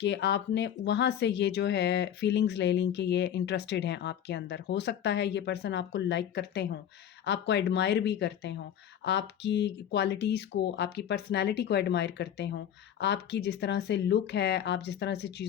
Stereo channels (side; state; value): right; quieter; 9.7 dB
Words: कि आपने वहाँ से ये जो है फीलिंग्स ले ली कि ये इंटरेस्टेड हैं आपके अंदर। हो सकता है ये पर्सन आपको लाइक करते हों, आपको एडमायर भी करते हों, आपकी क्वालिटीज़ को, आपकी पर्सनैलिटी को एडमायर करते हों, आपकी जिस तरह से लुक है, आप जिस तरह से